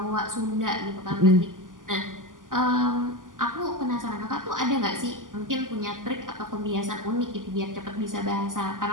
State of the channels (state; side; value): late; left; 0.88 ms